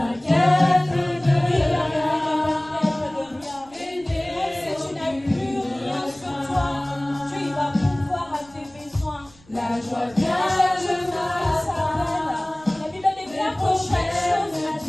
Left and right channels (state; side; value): noise; right; rumble, 26 dB below the sound